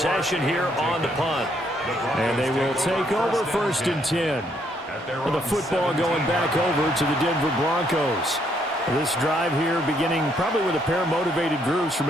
here on the punt. And they will take over 1st and 10. And the football going back over to the Denver Broncos. This drive here beginning probably with a pair of motivated groups.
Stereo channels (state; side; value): normal; both; correlation 0.71